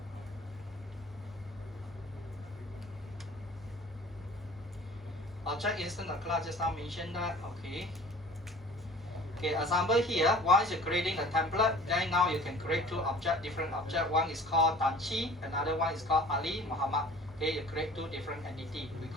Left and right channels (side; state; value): both; normal; correlation 0.47